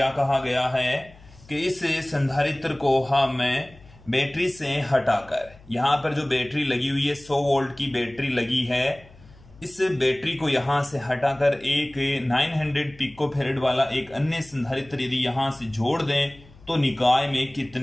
कहा गया है कि इस संधारित्र को हमें बैटरी से हटाकर, यहां पर जो बैटरी लगी हुई है 100 वोल्ट की बैटरी लगी है, इस बैटरी को यहां से हटाकर एक 900 पिकोफैरेड वाला एक अन्य संधारित्र यदि यहां से जोड़ दें तो निकाय में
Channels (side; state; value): left; noise; hum, 24 dB below the sound